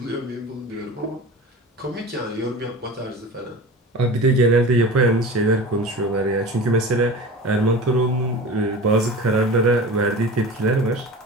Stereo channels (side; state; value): both; normal; correlation 0.34